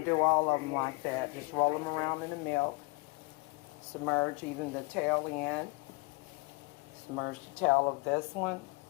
do all of them like that. Just roll them around in the milk, submerge even the tail in, submerge the tail of this one,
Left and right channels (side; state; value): right; quieter; 28.2 dB